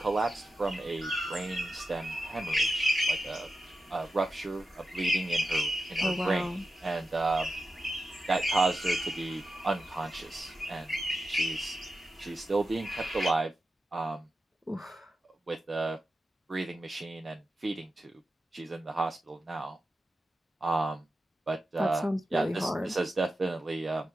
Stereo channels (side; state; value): both; normal; correlation 0.91